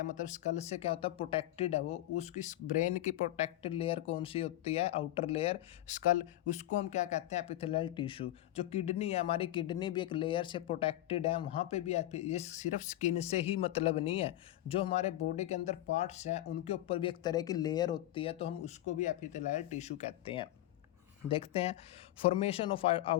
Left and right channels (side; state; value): right; quieter; 14.6 dB